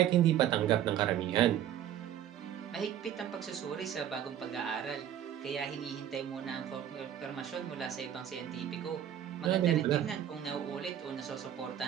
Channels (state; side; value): quieter; left; 10.6 dB